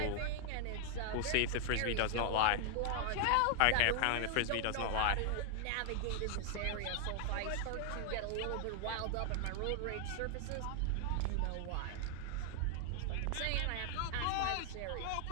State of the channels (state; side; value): different; both; correlation 0.00